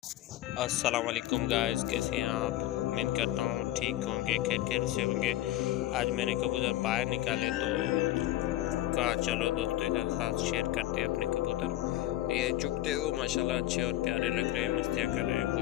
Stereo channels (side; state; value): right; quieter; 14.7 dB